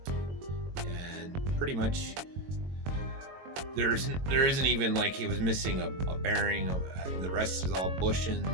and pretty much there isn't even, like, it was missing a bearing. The rest is all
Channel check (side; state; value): left; late; 22 ms